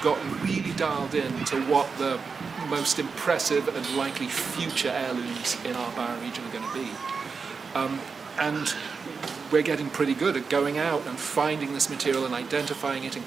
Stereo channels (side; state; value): left; quieter; 5.1 dB